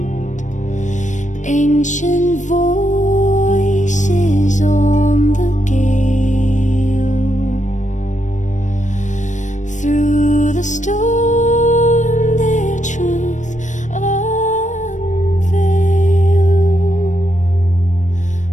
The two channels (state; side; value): late; right; 0.35 ms